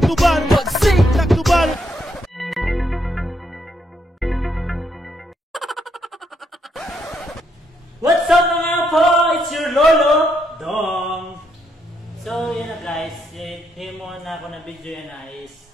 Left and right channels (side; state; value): both; normal; correlation 0.76